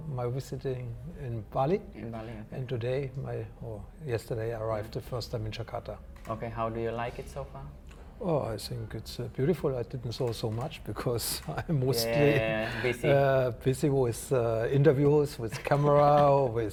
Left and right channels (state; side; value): identical; both; correlation 1.00